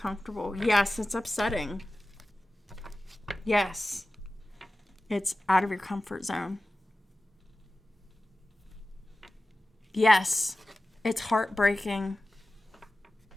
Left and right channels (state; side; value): normal; both; correlation 0.95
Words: Yes, it's upsetting. Yes, it's out of your comfort zone. Yes, it's heartbreaking.